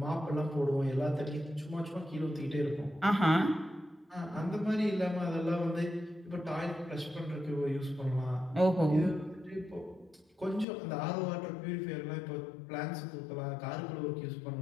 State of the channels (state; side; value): drops out; right; at 10.7 s